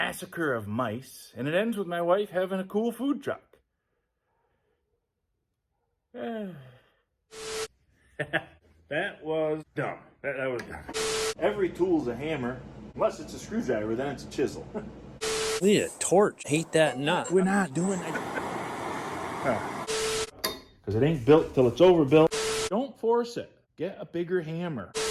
of mice, and it ends with my wife having a cool food truck. That was dumb. That was dumb. Every tool's a hammer, unless it's a screwdriver, then it's a chisel. We need a torch. Hate that nut. We're not doing that. Because it ain't built till it's overbuilt. Don't force it. Get a bigger hammer.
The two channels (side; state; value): both; identical; correlation 1.00